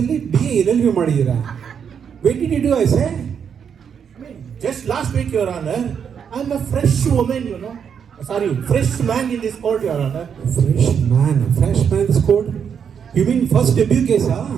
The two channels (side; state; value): left; quieter; 7.4 dB